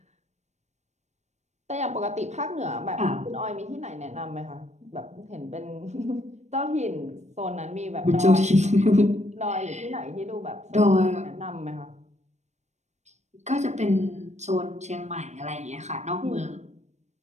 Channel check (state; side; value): late; left; 0.33 ms